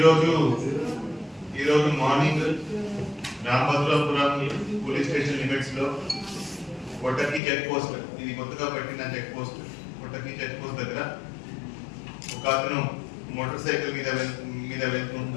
morning Ramabhadrapuram police station limits లో కొట్టకి చెక్ పోస్ట్, ఇది కొత్తగా పెట్టిన చెక్ పోస్ట్, కొట్టకి చెక్ పోస్ట్ దగ్గర ఒక అతను మోటార్ సైకిల్ మీద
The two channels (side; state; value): right; drops out; at 7.4 s